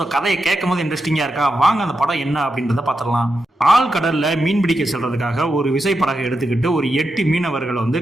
கதையை கேட்கும் போது இன்ட்ரெஸ்டிங்காக இருக்கா? வாங்க அந்த படம் என்ன அப்படின்றத பார்த்துடலாம். ஆழ்கடலில் மீன் பிடிக்க செல்றதுக்காக ஒரு விசைப்படகை எடுத்துக்கிட்டு ஒரு 8 மீனவர்கள் வந்து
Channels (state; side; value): normal; both; correlation 0.87